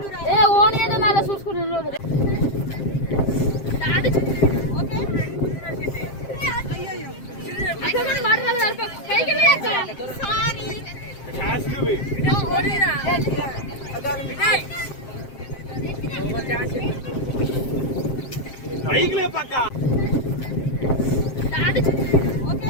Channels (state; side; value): late; right; 7.5 ms